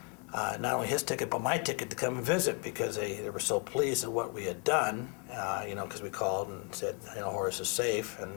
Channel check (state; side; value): quieter; right; 37.1 dB